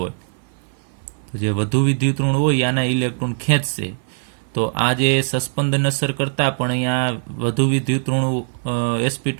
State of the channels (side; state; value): left; silent; 56 dB below the other